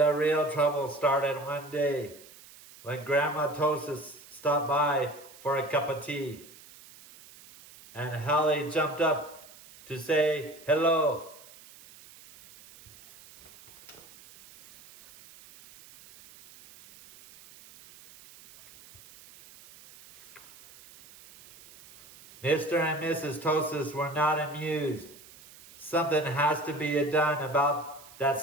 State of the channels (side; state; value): right; noise; hiss, 21 dB below the sound